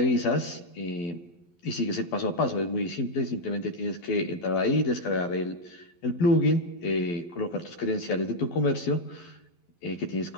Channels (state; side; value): late; right; 11 ms